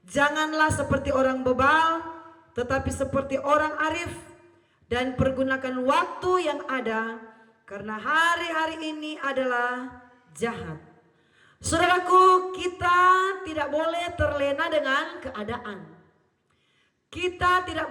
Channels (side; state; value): both; identical; correlation 1.00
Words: Janganlah seperti orang bebal, tetapi seperti orang arif, dan pergunakan waktu yang ada, karena hari-hari ini adalah jahat. Saudaraku, kita tidak boleh terlena dengan keadaan. Kita tidak